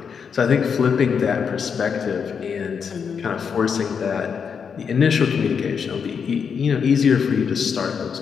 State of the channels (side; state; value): right; quieter; 6.5 dB